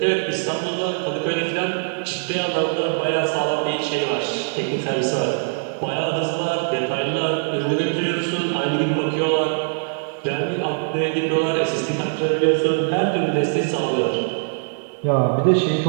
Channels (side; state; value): left; silent; digital silence